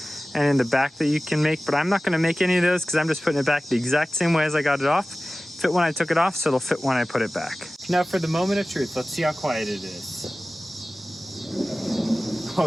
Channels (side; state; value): both; normal; correlation 0.97